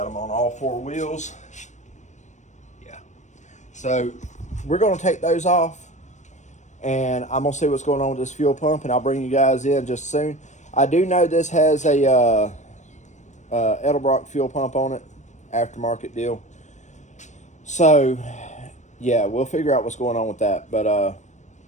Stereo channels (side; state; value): right; late; 0.34 ms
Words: them on all four wheels. Yeah. So we're going to take those off, and I'm going to see what's going on with this fuel pump, and I'll bring you guys in just soon. I do know this has a Edelbrock fuel pump on it, aftermarket deal. So, yeah, we'll figure out what's going on with that. But,